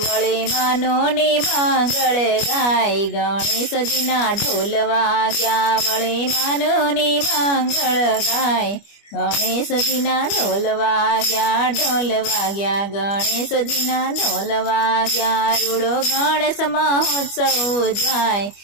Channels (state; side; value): late; right; 25 ms